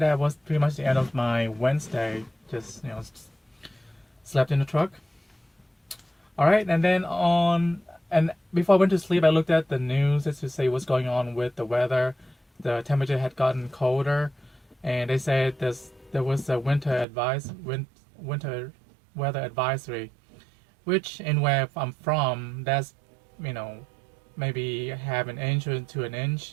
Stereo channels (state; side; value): drops out; left; at 17.1 s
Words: was pretty much the end of my Wednesday. Just slept in the truck. All right, and then And before I went to sleep, I looked at the news just to see what's going on with the weather. The temperature had gotten colder, and they said there was a winter weather advisory, which in where I'm from, that's maybe half an inch to an